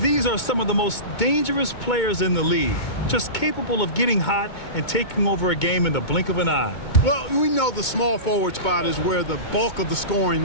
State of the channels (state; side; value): late; right; 2.2 ms